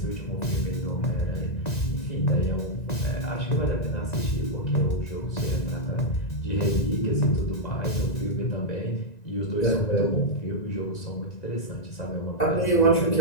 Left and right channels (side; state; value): right; late; 1.9 ms